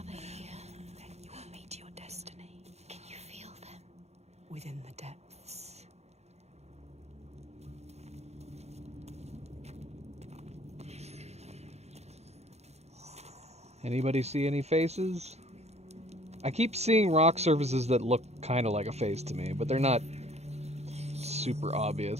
they here? then you will meet your destiny Can you feel them? within the depths. Anybody see any faces? I keep seeing rock surfaces that look kind of like a face to me, but they're not super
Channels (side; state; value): left; late; 0.31 ms